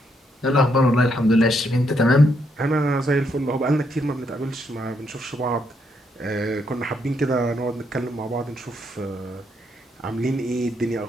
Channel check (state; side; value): normal; both; correlation 0.76